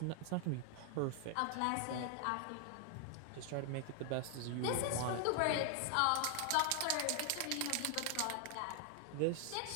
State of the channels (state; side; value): different; both; correlation 0.00